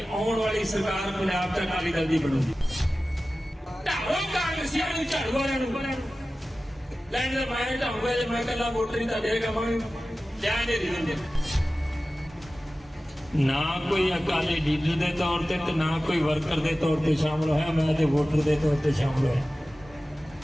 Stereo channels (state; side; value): normal; both; correlation 0.96